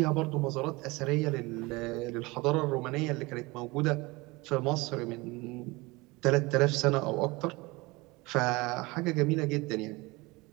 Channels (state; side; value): quieter; left; 23.4 dB